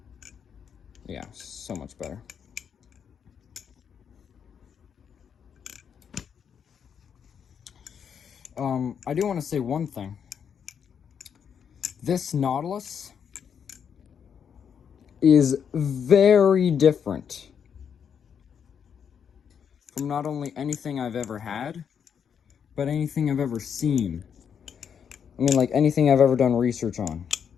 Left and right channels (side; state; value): right; quieter; 7.6 dB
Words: Yeah, so much better. I do want to say one thing. This Nautilus is very different from not only anything I've ever had, but anything I've ever seen. I mean, like anything I've ever done research on.